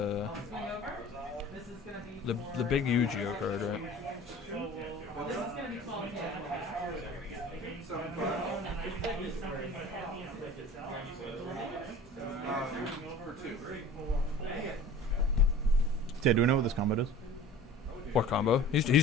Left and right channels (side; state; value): both; normal; correlation 0.42